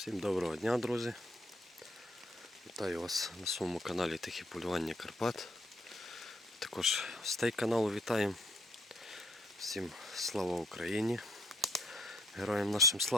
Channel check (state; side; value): normal; both; correlation 0.66